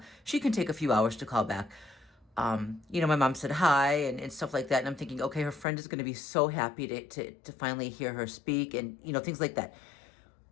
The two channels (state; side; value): drops out; right; at 5.7 s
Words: She can take a few hours to call back. My mom said hi and stuff like that. And I'm thinking, okay, her friend is going to be so happy to finally hear her speak and, things like that.